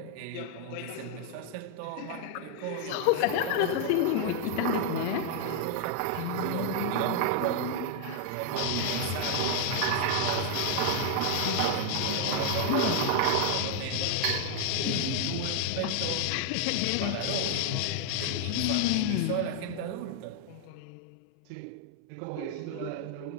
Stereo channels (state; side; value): different; both; correlation 0.00